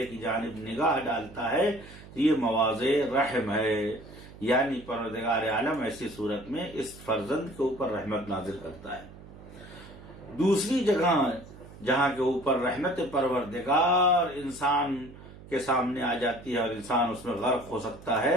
کی جانب نگاہ ڈالتا ہے تو یہ مواضع رحم ہے، یعنی پروردگار عالم ایسی صورت میں اس فرزند کے اوپر رحمت نازل کرتا ہے۔ دوسری جگہ جہاں کے اوپر رحمت پروردگار انسان کے سامنے آ جاتی ہے اور انسان اس میں غرق ہو سکتا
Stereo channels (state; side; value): noise; right; hum, 18 dB below the sound